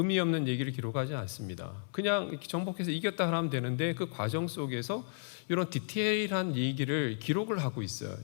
없는 얘기를 기록하지 않습니다. 그냥 정복해서 이겼다 하면 되는데 그 과정 속에서 이런 디테일한 얘기를 기록을 하고 있어요.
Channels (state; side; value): silent; right; digital silence